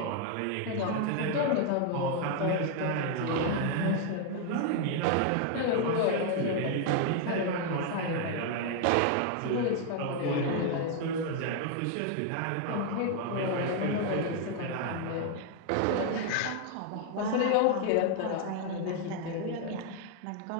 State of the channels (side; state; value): both; different; correlation 0.00